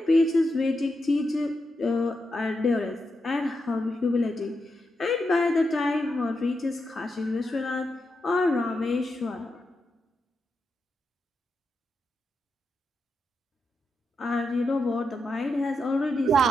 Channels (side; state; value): both; normal; correlation 0.86